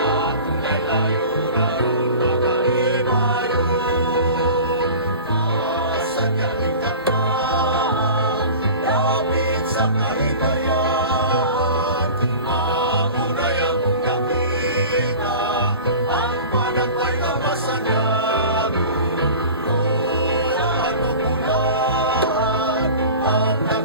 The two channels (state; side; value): inverted; both; correlation -0.38